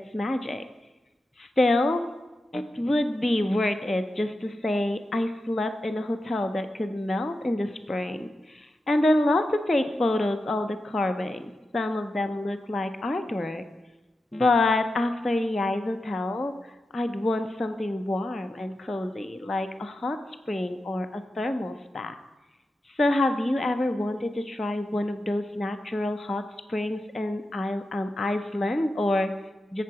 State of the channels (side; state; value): both; normal; correlation 0.90